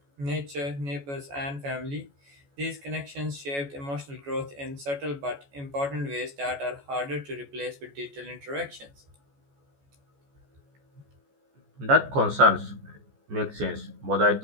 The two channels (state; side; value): late; left; 14 ms